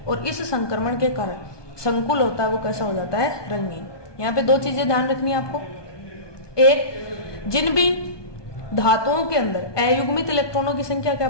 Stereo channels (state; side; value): late; right; 1.2 ms